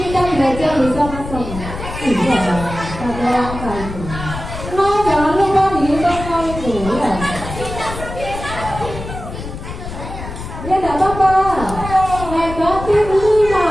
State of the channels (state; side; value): noise; left; rumble, 9 dB below the sound